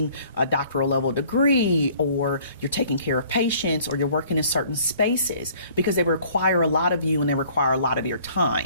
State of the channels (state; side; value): inverted; both; correlation -0.56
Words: a doctoral level degree or you're taking care of patients or you're working in certain spaces because they require a lot of you and they require a lot of your